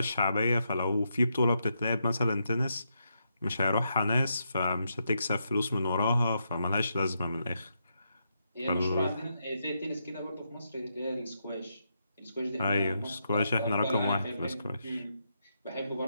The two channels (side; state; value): both; inverted; correlation -0.82